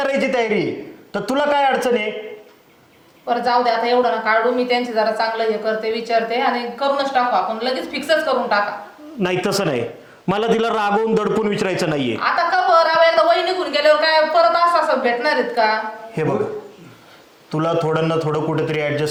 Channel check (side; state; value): both; identical; correlation 1.00